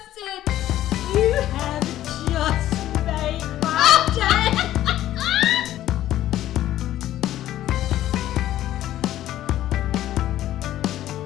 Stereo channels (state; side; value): quieter; right; 13.2 dB